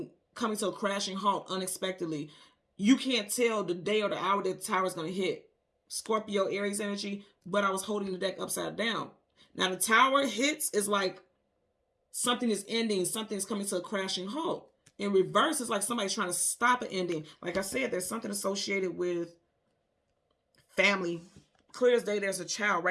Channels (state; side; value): identical; both; correlation 1.00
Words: coming to a crashing halt unexpectedly. You can't tell the day or the hour that the tower is going to hit. Scorpio, Aries energy, but I was holding the deck upside down. Now the tower hits is like something is ending, something is coming to a crashing halt. In reverse, it's like somebody's trying to stop an ending. Like I said, there's something associated with family. Clear as day, there's a child